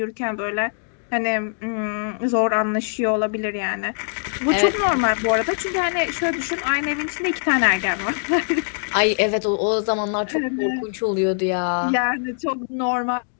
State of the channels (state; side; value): silent; right; digital silence